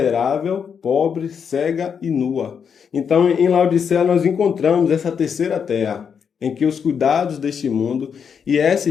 pobre, cega e nua. Então, em Laodiceia, nós encontramos essa terceira terra, em que os cuidados deste mundo, e essa,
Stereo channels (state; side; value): quieter; right; 7.0 dB